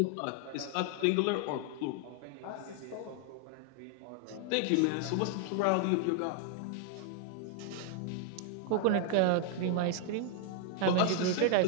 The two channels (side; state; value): both; different; correlation 0.00